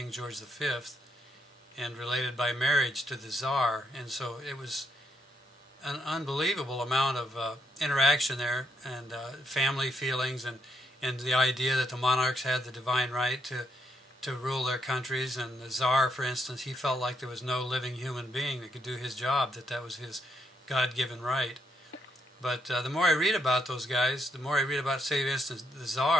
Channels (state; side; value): normal; both; correlation 0.77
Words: George V, and related by marriage to the Tsar. And so it was an unbelievable amount of interaction there, and family feelings, and the idea that the monarchs had the divine right to rule their countries. And the Tsar, for instance, he felt like there was no living human being that could do his job, that was his God-given right. But the more I read about those guys, the more I read about, say, for instance, the